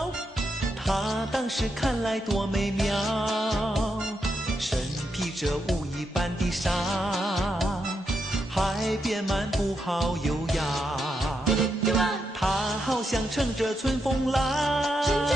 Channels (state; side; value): normal; both; correlation 0.83